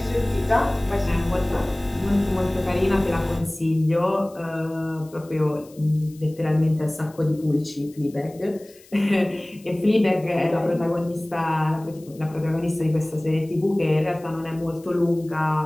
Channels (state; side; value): noise; left; hiss, 26 dB below the sound